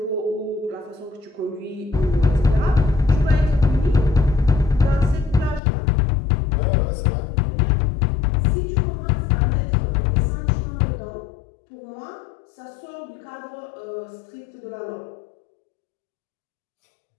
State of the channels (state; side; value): drops out; right; at 5.6 s